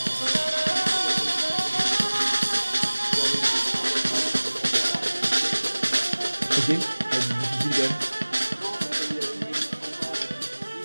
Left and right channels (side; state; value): both; inverted; correlation -1.00